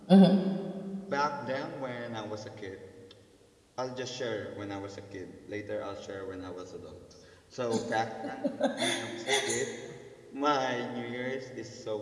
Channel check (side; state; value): both; identical; correlation 1.00